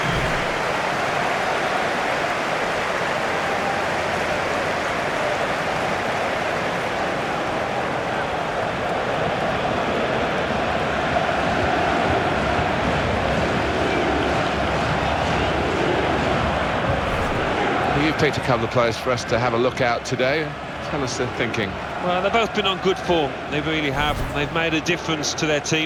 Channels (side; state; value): both; identical; correlation 1.00